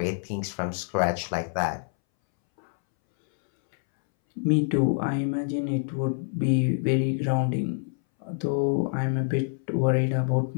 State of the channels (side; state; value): right; silent; 61 dB below the other